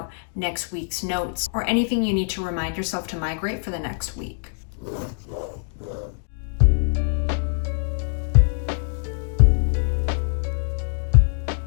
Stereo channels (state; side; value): silent; right; digital silence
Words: next week's notes or anything you need to remind yourself to migrate for the next week.